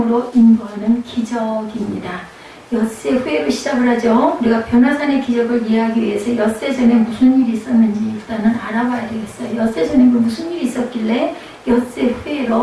인도하는 기적입니다. 엿새 후에로 시작을 하죠. 우리가 변화산의 기적을 이해하기 위해서 엿새 전에 무슨 일이 있었는지 일단은 알아봐야 되겠어요. 엿새 전에 무슨 일이 있었길래 엿새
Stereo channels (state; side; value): identical; both; correlation 1.00